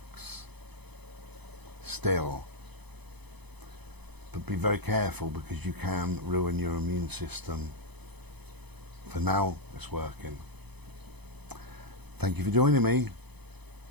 still. But be very careful, because you can ruin your immune system. For now, it's working. Thank you for joining me.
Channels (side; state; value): left; late; 0.99 ms